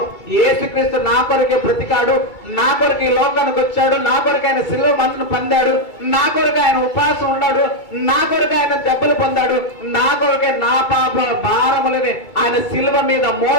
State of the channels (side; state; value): right; late; 2.3 ms